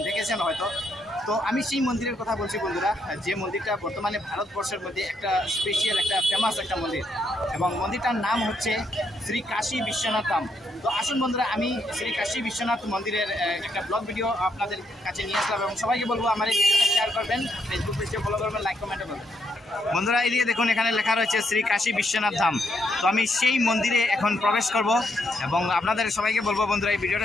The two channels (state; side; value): normal; both; correlation 0.76